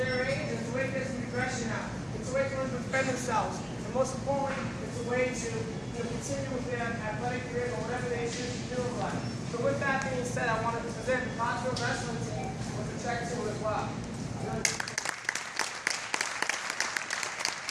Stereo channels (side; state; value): both; identical; correlation 1.00